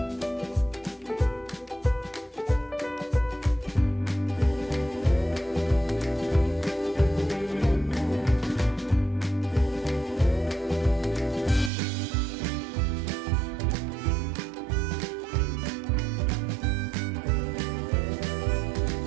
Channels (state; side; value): drops out; left; at 11.7 s